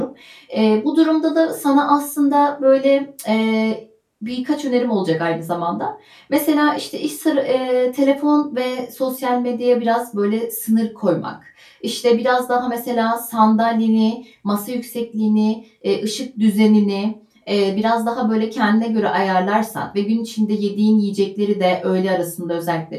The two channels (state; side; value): identical; both; correlation 1.00